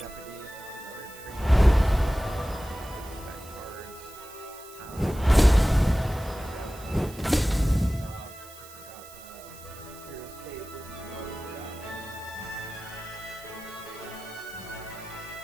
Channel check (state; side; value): noise; right; hiss, 18 dB below the sound